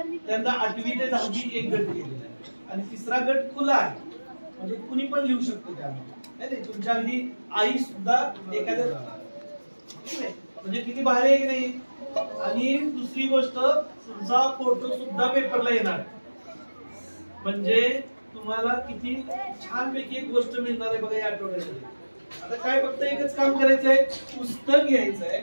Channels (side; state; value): both; inverted; correlation -1.00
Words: त्यांना 8वी ते 10वी एक गट केलेला आहे आणि तिसरा गट खुला आहे. म्हणजे कुणी पण लिहू शकतो त्यामध्ये. तुमच्या अगदी आई सुद्धा एखाद्या, म्हणजे किती भारी आहे की नाही. आणि दुसरी गोष्ट, तुमचा फोटो सुद्धा पेपरला येणार. म्हणजे तुम्हाला किती छानपैकी एक गोष्ट मिळणार आहे बघा या आठवड्यामध्ये. आता काय फक्त एकच काम करायचंय, पुस्तक